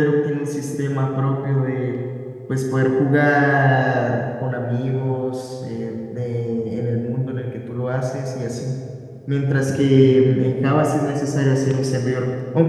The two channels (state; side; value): identical; both; correlation 1.00